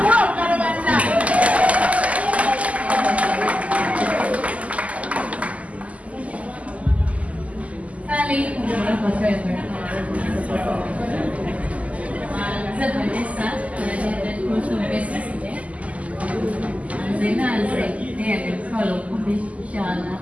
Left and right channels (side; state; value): left; late; 0.069 ms